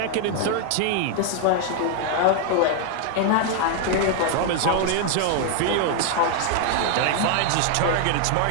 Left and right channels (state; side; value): different; both; correlation 0.00